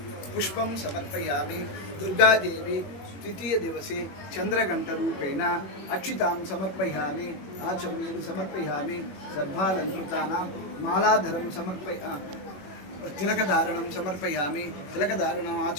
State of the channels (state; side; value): late; right; 21 ms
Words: पुष्पं समर्पयामि दुर्गादेवी तृतीय दिवसे चन्द्रघण्टरूपेण अक्षितां समर्पयामि आचमनीं समर्पयामि सर्वालङ्कृतानां मालाधरं तिलकधारणं समर्पयामि तिलकधारणम्